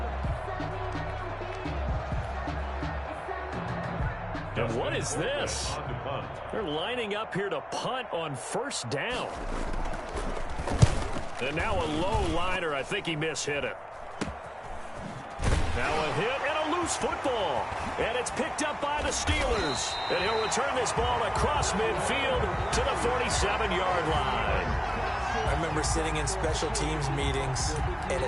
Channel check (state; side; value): identical; both; correlation 1.00